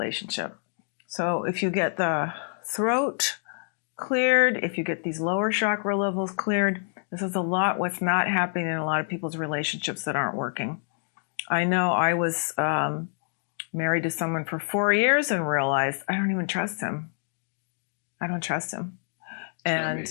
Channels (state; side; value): silent; right; digital silence